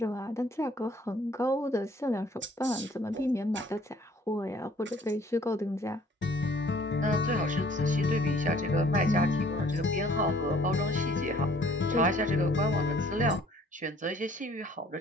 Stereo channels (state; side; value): normal; both; correlation 0.57